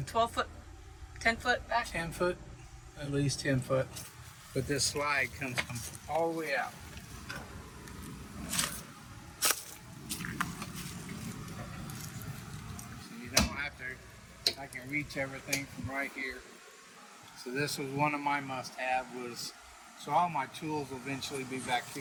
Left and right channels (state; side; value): identical; both; correlation 1.00